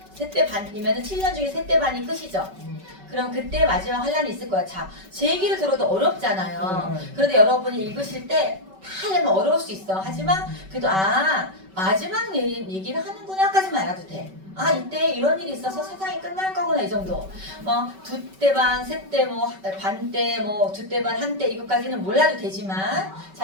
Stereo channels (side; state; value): left; late; 5.2 ms